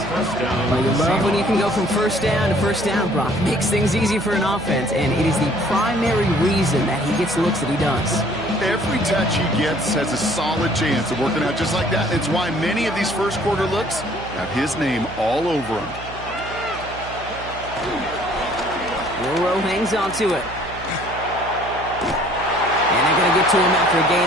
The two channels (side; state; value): right; noise; hum, 14 dB below the sound